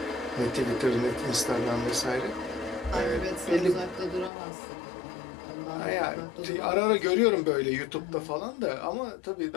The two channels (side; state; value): right; drops out; at 4.3 s